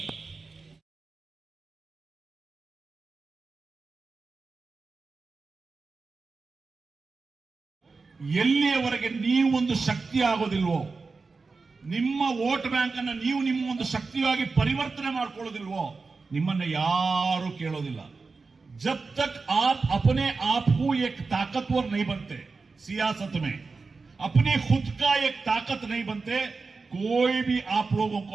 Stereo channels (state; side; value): quieter; left; 4.2 dB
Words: ಎಲ್ಲಿಯವರೆಗೆ ನೀವು ಒಂದು ಶಕ್ತಿ ಆಗೋದಿಲ್ವೋ, ನಿಮ್ಮ ವೋಟ್ ಬ್ಯಾಂಕ್ ಅನ್ನು ನೀವು ನಿಮ್ಮ ಒಂದು ಶಕ್ತಿಯಾಗಿ ಪರಿವರ್ತನೆ ಮಾಡ್ಕೊಳ್ಳೋದಿಲ್ವೋ, ನಿಮ್ಮನ್ನ ಯಾರು ಕೇಳೋದಿಲ್ಲ। जब तक आप अपने आप को एक ताकतवर नहीं बनते, सियासत में अपनी खुद का एक ताकत नहीं बनते, कोई भी आप लोगों को